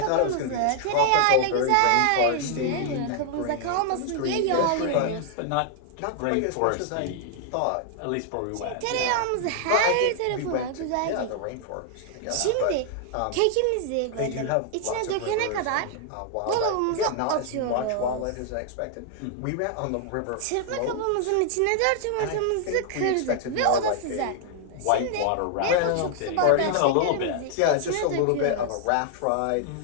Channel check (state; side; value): different; both; correlation 0.00